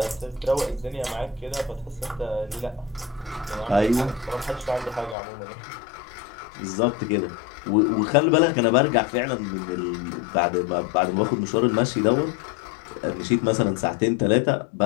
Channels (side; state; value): right; drops out; at 5.2 s